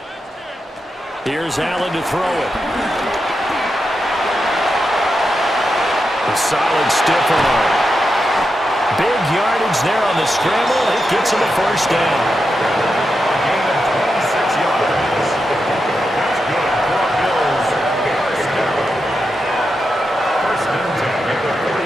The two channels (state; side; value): normal; both; correlation 0.87